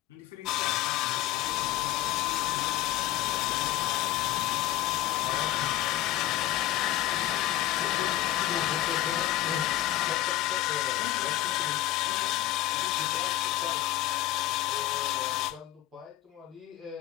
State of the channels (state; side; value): quieter; right; 14.8 dB